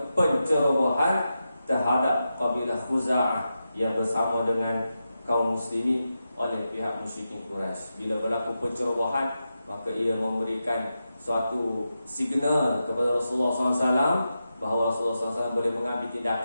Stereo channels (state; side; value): inverted; both; correlation -0.89